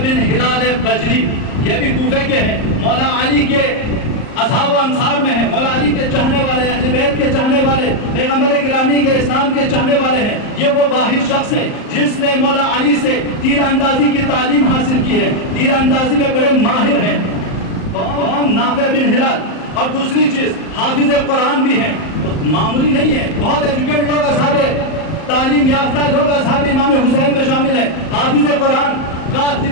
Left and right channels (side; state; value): right; late; 38 ms